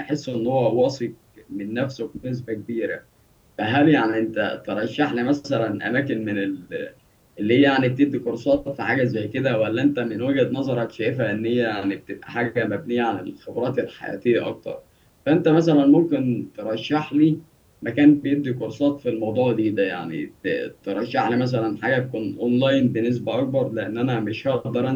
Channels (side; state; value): both; identical; correlation 1.00